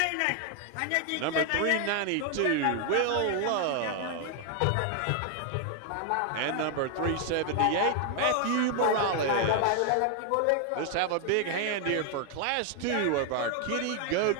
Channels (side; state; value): both; different; correlation 0.00